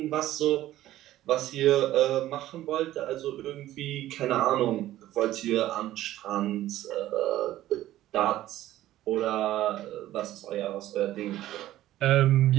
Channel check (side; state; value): left; quieter; 14.3 dB